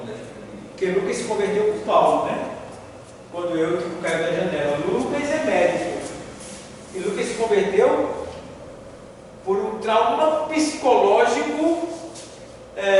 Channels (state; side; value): identical; both; correlation 1.00